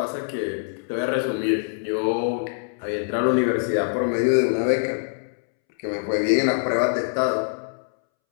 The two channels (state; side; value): silent; right; 63 dB below the other